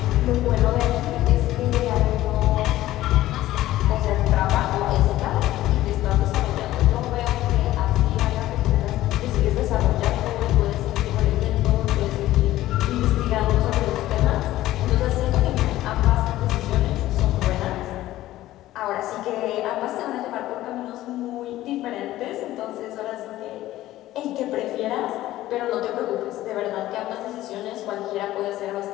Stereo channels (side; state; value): right; quieter; 15.2 dB